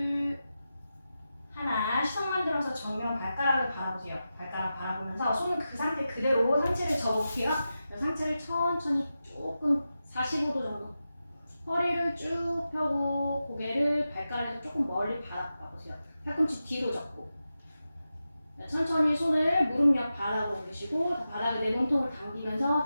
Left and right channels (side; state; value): both; inverted; correlation -0.92